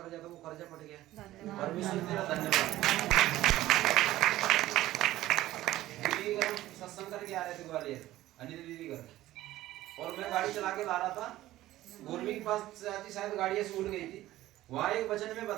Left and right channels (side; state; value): left; quieter; 15.4 dB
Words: कर्जा था वो कर्जा पट गया। परमेश्वर तेरा धन्यवाद। दीदी सत्संग करके आ रहे थे ग्वालियर, अनिता दीदी घर, और मैं गाड़ी चला के ला रहा था, गोरवी के पास शायद गाड़ी ऐसे उड़ गई थी, वहाँ एक वचन में